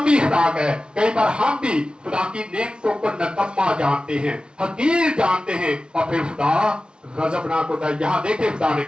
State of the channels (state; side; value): late; left; 0.055 ms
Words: खुराक है। कई बार हम भी खुदा की नेमतों को नकम्मा जानते हैं, हकीर जानते हैं, और फिर खुदा गजबनाक होता है। यहाँ देखे खुदा ने